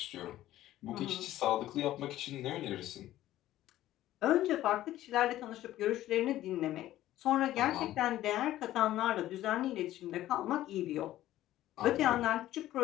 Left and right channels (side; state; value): right; quieter; 14.1 dB